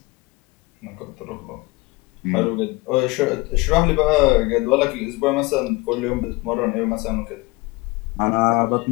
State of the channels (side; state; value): right; quieter; 23.8 dB